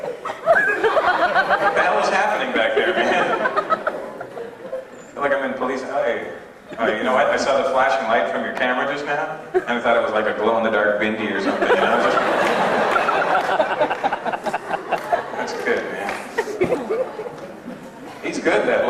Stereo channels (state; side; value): identical; both; correlation 1.00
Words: What the hell is happening back there, man? I feel like I'm in police. You know what? I saw the flashing light from your camera just now, and I thought it was like a glow-in-the-dark bindi or something. You know? That's good, man. He's good, that